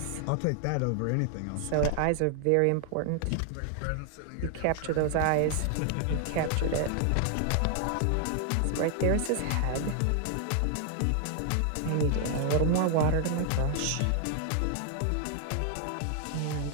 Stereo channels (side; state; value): both; different; correlation 0.00